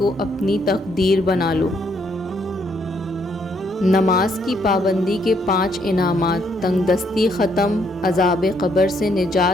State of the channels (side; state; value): both; normal; correlation 0.71